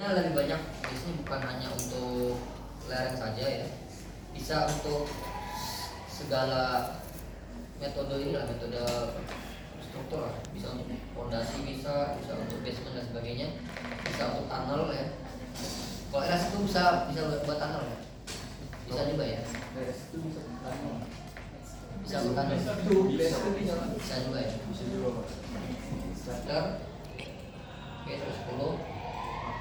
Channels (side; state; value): both; identical; correlation 1.00